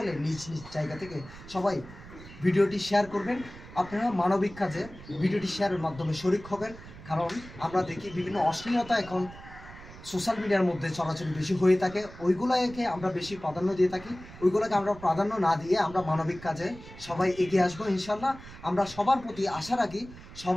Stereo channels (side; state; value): right; noise; rumble, 17 dB below the sound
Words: নিজ নিজ জায়গা থেকে সবাই ভিডিওটি শেয়ার করবেন। আপনারা মানবিক কাজে ভিডিওটি শেয়ারের মাধ্যমে শরিক হবেন। কারণ আমরা দেখি বিভিন্ন অশ্লীলতা এখন সোশ্যাল মিডিয়ার মধ্যে চলাচল বেশি হয়ে থাকে, ওইগুলোকে আমরা বেশি প্রাধান্য দিয়ে থাকি। ওইগুলোকে আমরা প্রাধান্য না দিয়ে আমরা মানবিক কাজে সবাই এগিয়ে আসবো ইনশাল্লাহ। আমরা সবার প্রতি আশা রাখি